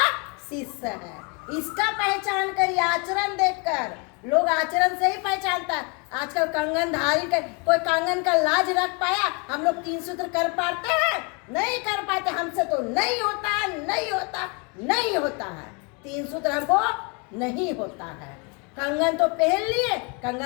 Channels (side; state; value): right; quieter; 31.5 dB